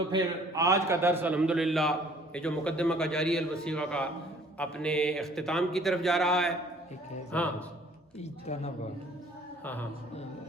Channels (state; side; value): normal; both; correlation 0.55